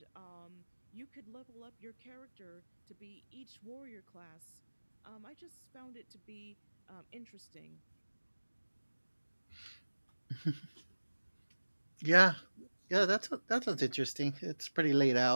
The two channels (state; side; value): inverted; both; correlation -1.00